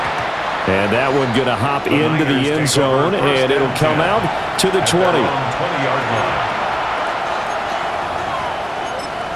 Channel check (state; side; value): identical; both; correlation 1.00